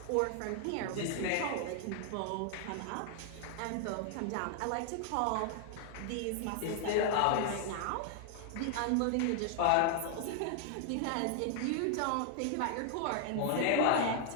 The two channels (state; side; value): different; both; correlation 0.00